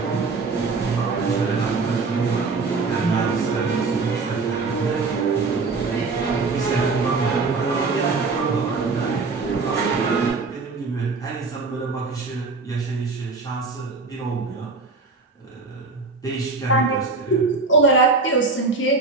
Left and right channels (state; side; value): quieter; left; 4.1 dB